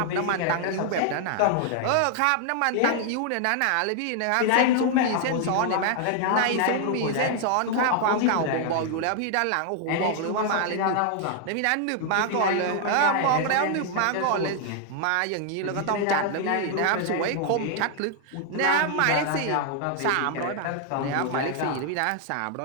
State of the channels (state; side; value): different; both; correlation 0.00